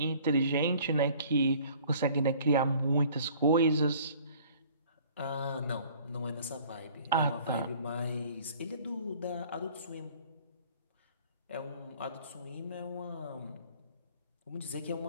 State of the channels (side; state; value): both; inverted; correlation -0.53